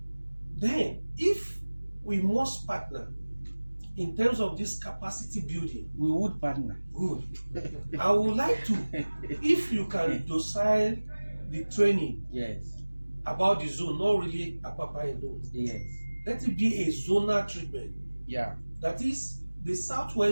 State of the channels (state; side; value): inverted; both; correlation -1.00